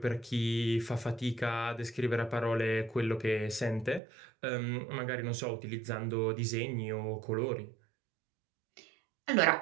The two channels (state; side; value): drops out; left; at 4.0 s